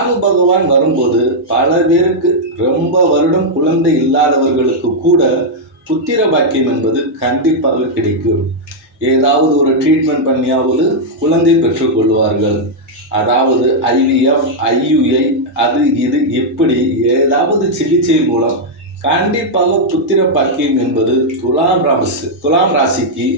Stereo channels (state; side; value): normal; both; correlation -0.04